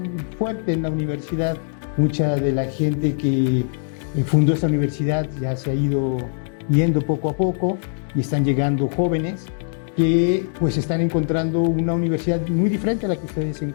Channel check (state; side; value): silent; right; digital silence